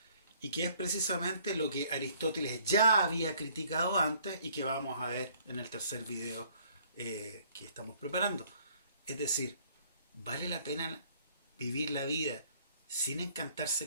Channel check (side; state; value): both; inverted; correlation -0.60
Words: y que es precisamente lo que Aristóteles ya había criticado antes y que vamos a ver en el tercer video que estamos preparando. Es decir, ¿vale la pena vivir la vida sin encantarse